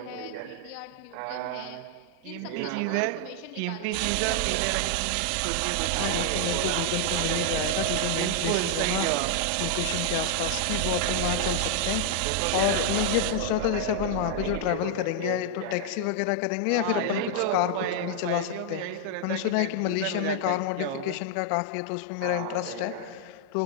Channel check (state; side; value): different; both; correlation 0.00